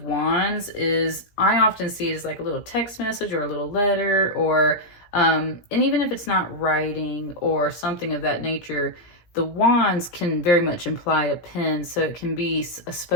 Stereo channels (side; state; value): right; late; 17 ms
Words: Wands is, I often see it as like a little text message or a little letter, or, and even if it's not writing or something of that nature, the wands can very much imply a pen. So it can be a